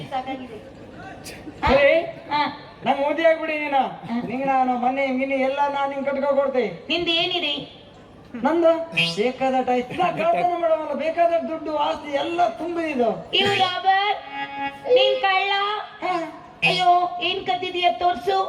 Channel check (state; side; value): identical; both; correlation 1.00